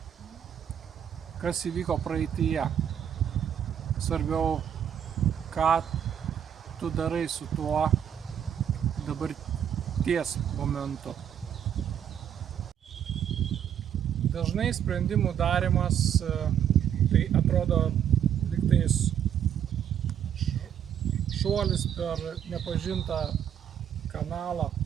kas įvyko praeityje. Svarbiau, ką tu darai su tuo dabarties momentu. Dažnai sprendimų darymas tai atrodo lygtais šuolis per nepažintą kanalą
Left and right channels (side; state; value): left; quieter; 9.2 dB